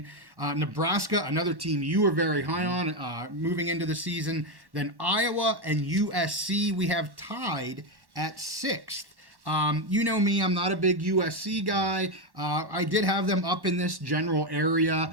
Nebraska, another team you were very high on moving into the season. Then Iowa and USC we have tied at 6th. You know me, I'm not a big USC guy. I did have them up in this general area.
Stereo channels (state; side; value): late; left; 1.1 ms